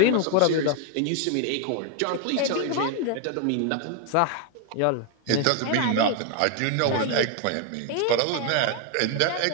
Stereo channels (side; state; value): both; different; correlation 0.01